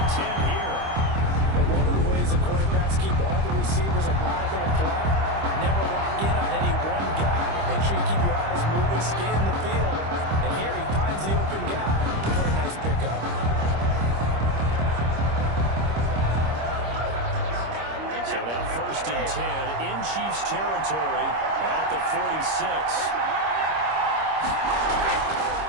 10 here. But one of the ways the quarterbacks keep all the receivers alive in a play, never lock in on any one guy. Make sure you keep your eyes moving, scan the field. And here he finds the open guy for a nice pickup. So now 1st and 10 in Chiefs territory at the 46.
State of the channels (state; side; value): late; left; 25 ms